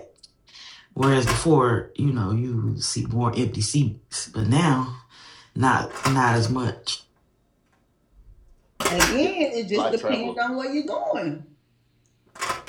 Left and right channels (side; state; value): both; identical; correlation 1.00